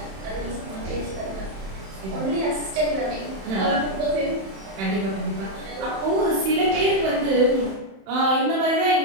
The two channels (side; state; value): left; late; 31 ms